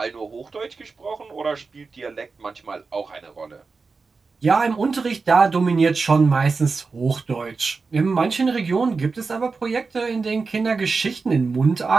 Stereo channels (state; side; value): quieter; left; 4.4 dB